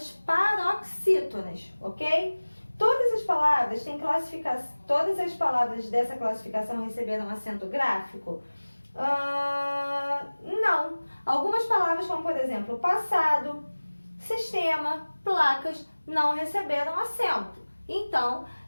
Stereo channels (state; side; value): inverted; both; correlation -1.00